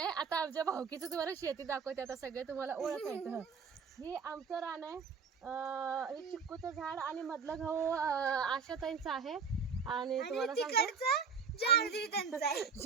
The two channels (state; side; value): quieter; left; 5.5 dB